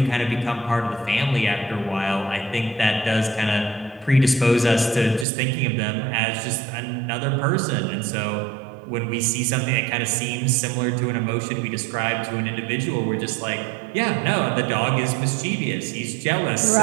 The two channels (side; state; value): left; drops out; at 5.2 s